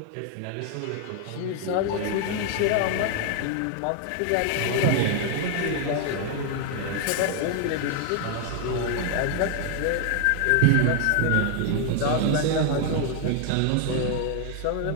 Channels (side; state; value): both; different; correlation 0.00